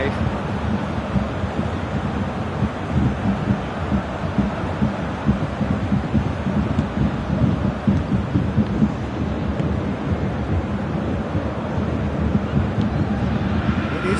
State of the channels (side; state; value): both; identical; correlation 1.00